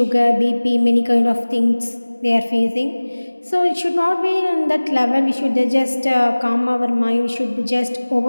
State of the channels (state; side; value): inverted; both; correlation -1.00